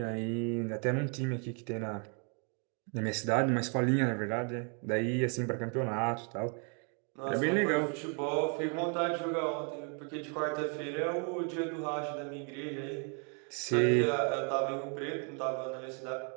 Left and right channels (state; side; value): quieter; left; 39.2 dB